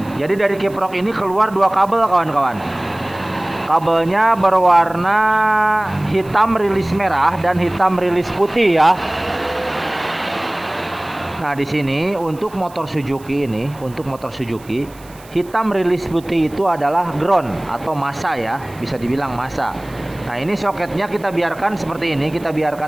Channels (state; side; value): noise; right; hiss, 24 dB below the sound